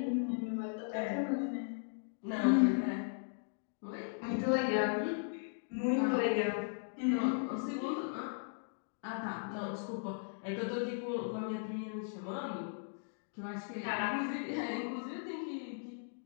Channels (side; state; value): right; silent; digital silence